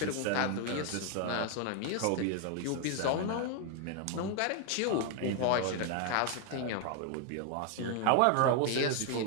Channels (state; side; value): different; both; correlation 0.00